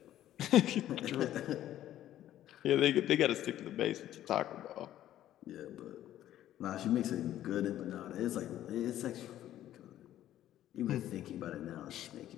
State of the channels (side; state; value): right; quieter; 12.6 dB